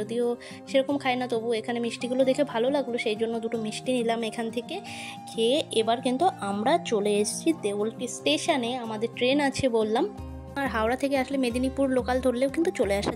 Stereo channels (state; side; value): identical; both; correlation 1.00